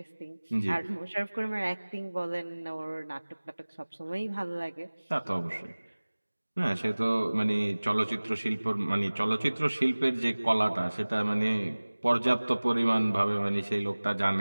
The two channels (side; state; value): both; inverted; correlation -1.00